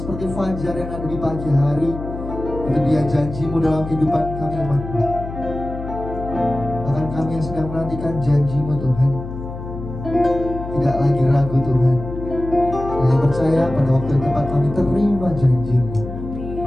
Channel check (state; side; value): noise; left; hum, 9 dB below the sound